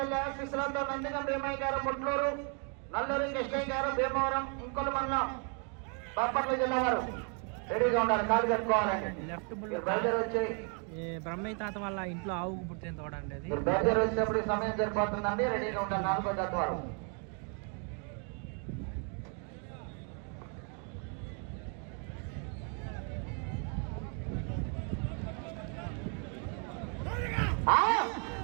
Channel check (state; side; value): quieter; left; 39.1 dB